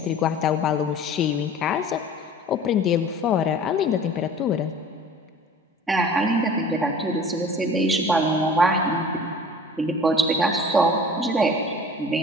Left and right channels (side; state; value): both; normal; correlation 0.44